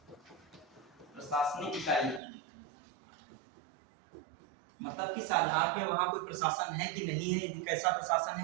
प्रशासनिक इकाई मतलब किस आधार पे वहां कोई प्रशासन है कि नहीं है, कैसा प्रशासन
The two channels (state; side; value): drops out; left; at 2.2 s